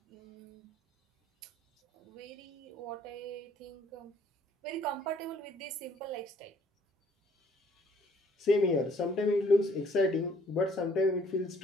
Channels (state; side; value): normal; both; correlation 0.61